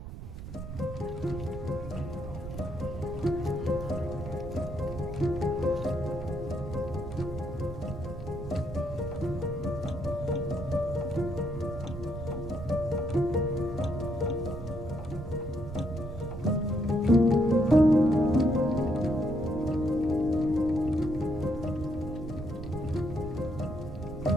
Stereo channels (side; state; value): right; noise; rumble, 10 dB below the sound